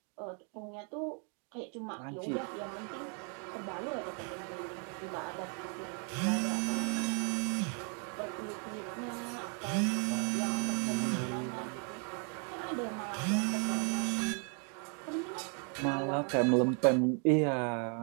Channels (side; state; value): left; quieter; 40.0 dB